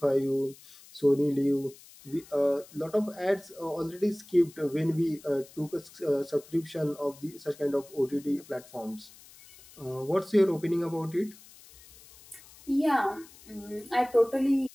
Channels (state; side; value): noise; left; hiss, 22 dB below the sound